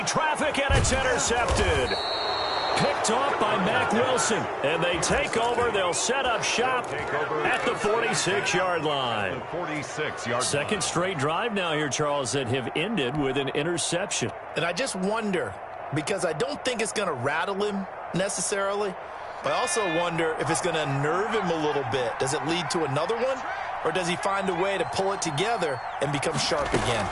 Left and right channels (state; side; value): identical; both; correlation 1.00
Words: traffic, and it's intercepted. Picked off by Mack Wilson, and they take over. They'll set up shop at the 46-yard line. Second straight drive now here, Charles, that have ended with an interception. And I just wonder, because I don't think it's going to rattle him necessarily, but I also wonder if it's going to unnerve him a little bit. Does it lead to another one, or does he find a way to pull it together and become sharp again?